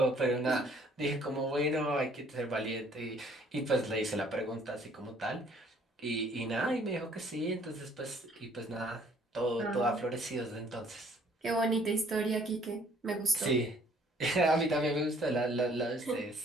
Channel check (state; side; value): normal; both; correlation 0.60